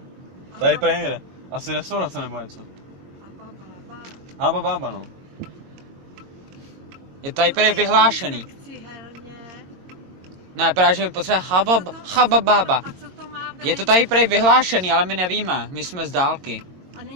Tady prý někde. Asi restaurace nebo něco. Haba Baba, no. Je tady prý vyhlášený. Ne, právě že mi potřebuje Haba Baba. Je to tady prý vyhlášený, ale my nevíme. My jsme z dálky. A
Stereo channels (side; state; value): left; late; 22 ms